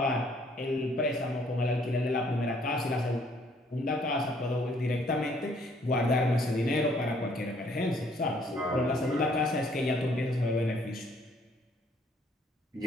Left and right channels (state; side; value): normal; both; correlation 0.64